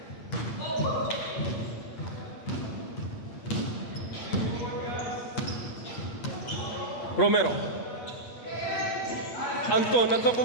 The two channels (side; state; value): right; late; 8.4 ms